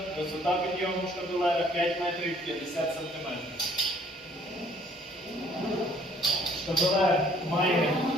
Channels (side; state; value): both; normal; correlation 0.60